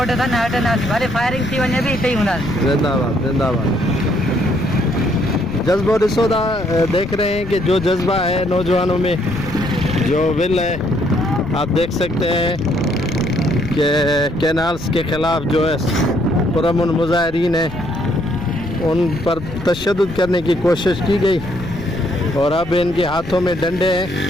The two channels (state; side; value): noise; left; rumble, 13 dB below the sound